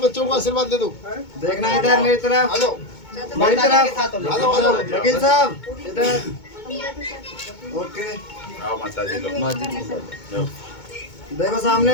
को आशीर्वाद दे दो। देखना है, इधर मेरी तरफ, आ जाओ, मेरी माता जी तरफ, के साथ हो आ जाओ, आ जाओ। वकील साहब इधर। ओके आओ माता जी लोग। देखो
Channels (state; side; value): late; right; 2.2 ms